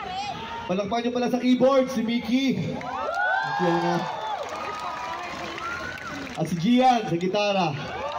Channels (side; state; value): both; identical; correlation 1.00